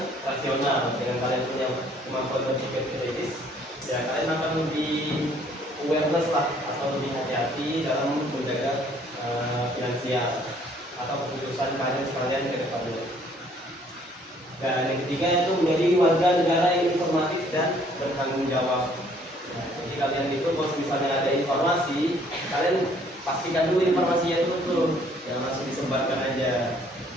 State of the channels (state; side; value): normal; both; correlation 0.61